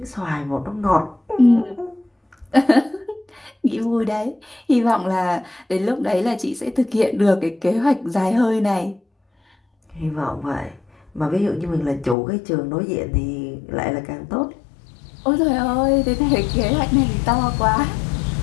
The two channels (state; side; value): drops out; right; at 12.2 s